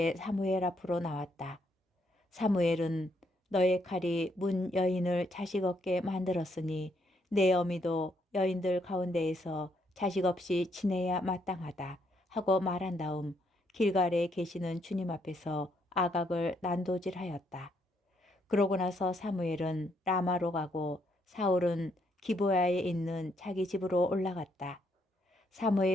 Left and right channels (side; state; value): both; normal; correlation 0.74